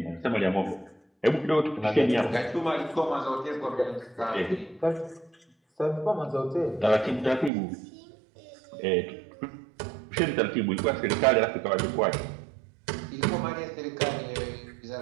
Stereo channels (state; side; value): drops out; left; at 7.5 s